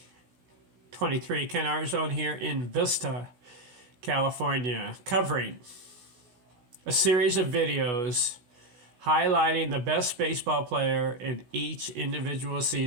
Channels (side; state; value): left; late; 16 ms